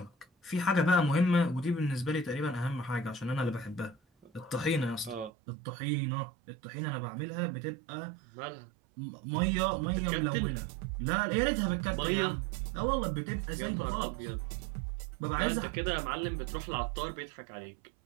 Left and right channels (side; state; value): left; drops out; at 5.3 s